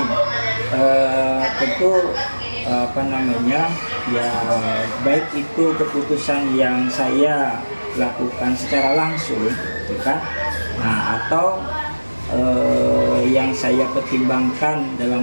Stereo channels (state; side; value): inverted; both; correlation -1.00